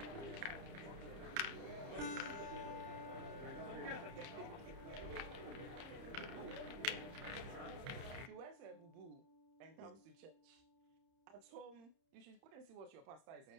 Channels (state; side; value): late; left; 30 ms